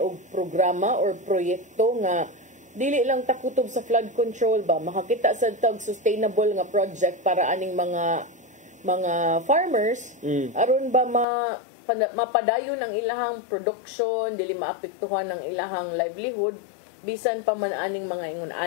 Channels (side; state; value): right; drops out; at 11.2 s